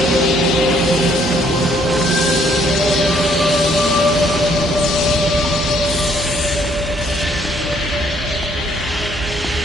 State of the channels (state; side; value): normal; both; correlation 0.65